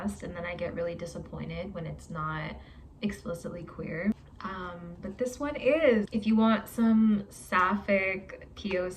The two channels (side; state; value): both; identical; correlation 1.00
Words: and then I get really disappointed when it's not explicitly queer. But this one is. If you want some sapphic